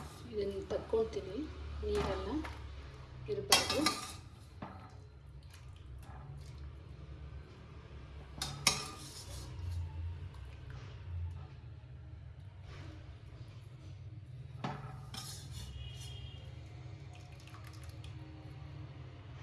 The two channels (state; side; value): identical; both; correlation 1.00